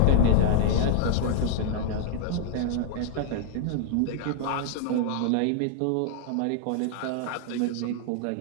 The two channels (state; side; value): different; both; correlation 0.00